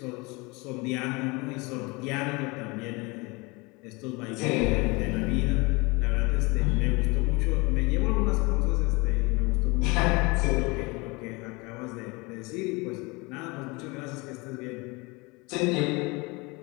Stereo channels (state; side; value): quieter; right; 26.2 dB